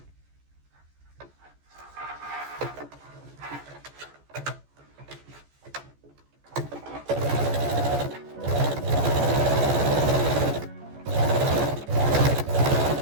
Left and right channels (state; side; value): late; left; 14 ms